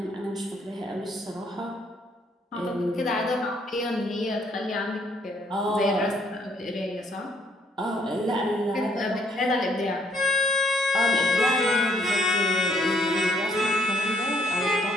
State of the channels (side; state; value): both; normal; correlation 0.67